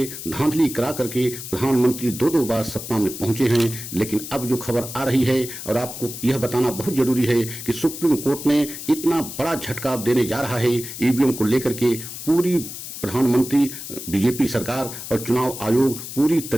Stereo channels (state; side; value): noise; left; hiss, 10 dB below the sound